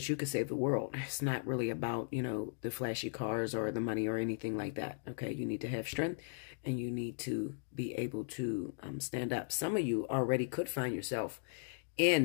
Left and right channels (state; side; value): silent; right; digital silence